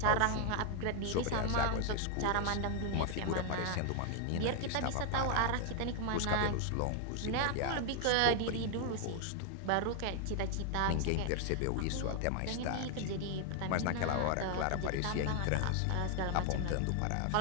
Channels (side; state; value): both; different; correlation 0.00